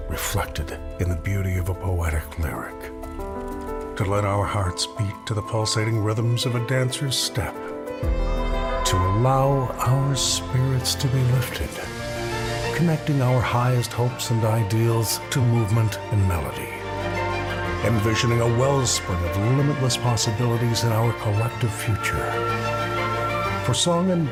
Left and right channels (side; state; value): both; identical; correlation 1.00